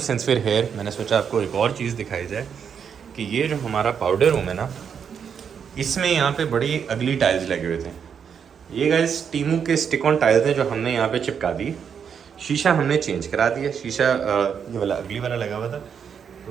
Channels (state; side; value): quieter; left; 7.3 dB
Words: सिंस फिर हेयर मैंने सोचा आपको एक और चीज़ दिखाई जाए कि ये जो हमारा पाउडर रूम है ना, इसमें यहाँ पे बड़ी अगली टाइल्स लगे हुए थे. ये गाइस टीमू के स्टिक ऑन टाइल्स हैं जो हमने यहाँ पे चिपका दी. शीशा हमने चेंज करा दिया. शीशा ये वाला अगली वाला लगा हुआ था